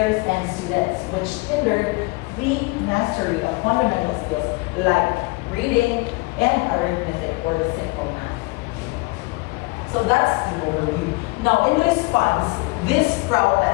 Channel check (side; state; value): right; quieter; 25.4 dB